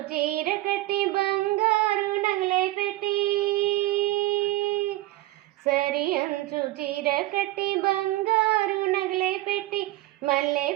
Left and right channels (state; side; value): quieter; left; 17.7 dB